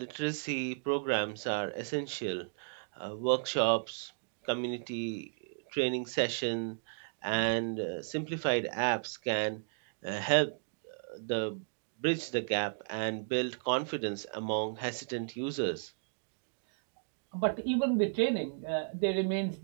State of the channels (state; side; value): silent; left; digital silence